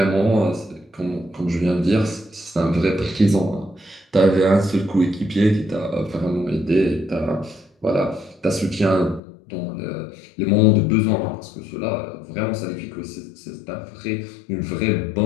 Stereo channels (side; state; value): right; drops out; at 9.2 s